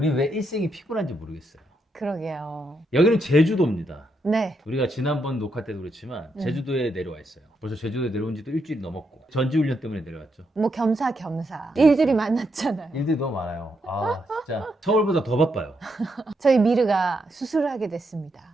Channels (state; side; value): normal; both; correlation 0.80